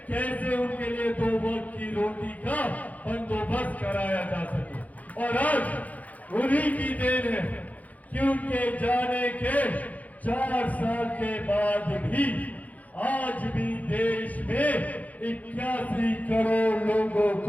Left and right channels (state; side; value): late; right; 0.075 ms